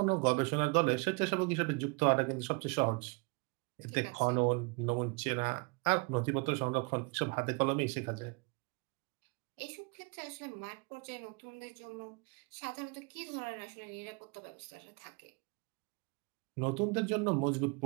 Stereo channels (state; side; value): quieter; left; 30.3 dB